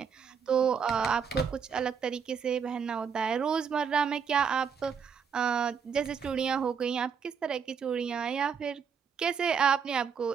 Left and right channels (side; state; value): left; quieter; 6.7 dB